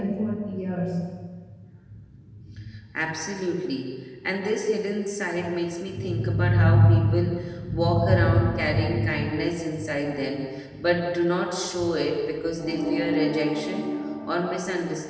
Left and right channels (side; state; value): both; identical; correlation 1.00